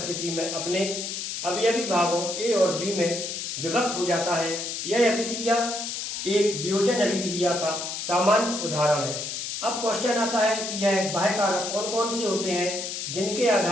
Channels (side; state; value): left; noise; hiss, 5 dB below the sound